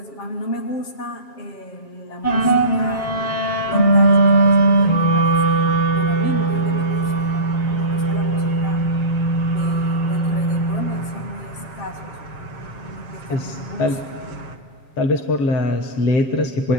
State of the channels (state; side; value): late; right; 7.4 ms